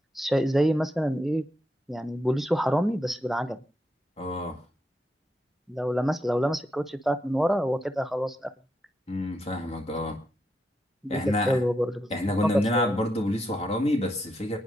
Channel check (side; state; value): both; normal; correlation 0.83